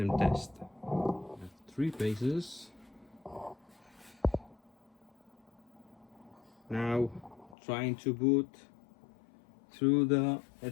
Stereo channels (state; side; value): drops out; right; at 7.6 s